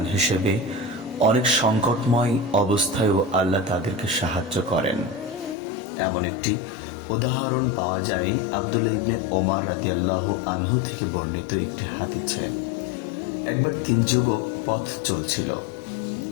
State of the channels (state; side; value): drops out; right; at 5.6 s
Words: হিসেবে অনেক সংকটময় অবস্থায়ও আল্লাহ তাদেরকে সাহায্য করেন। এমন একটি উদাহরণ পাওয়া যায় আব্দুল্লাহ ইবনে ওমর রাদিয়াল্লাহু আনহু থেকে বর্ণিত একটি হাদিসে। একবার 3 যুবক পথ চলছিল।